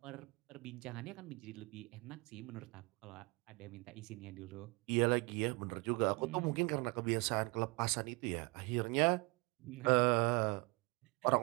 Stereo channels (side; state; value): left; quieter; 28.2 dB